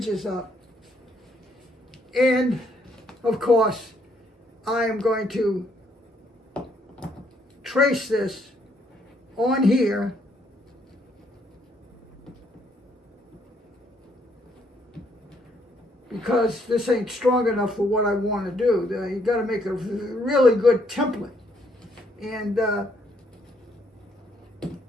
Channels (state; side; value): normal; both; correlation 0.70